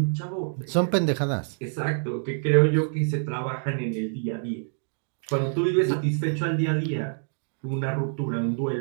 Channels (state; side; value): silent; left; digital silence